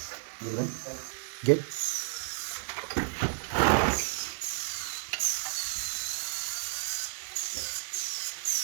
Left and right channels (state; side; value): silent; left; digital silence